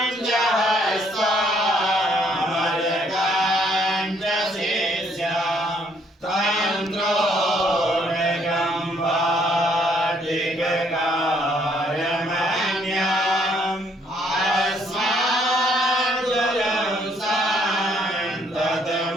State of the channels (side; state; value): both; normal; correlation 0.67